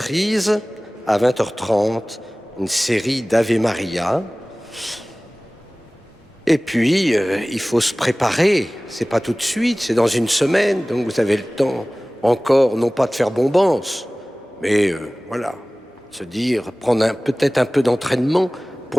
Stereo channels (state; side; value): normal; both; correlation 0.98